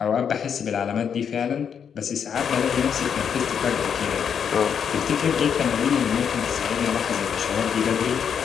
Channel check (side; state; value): right; quieter; 7.5 dB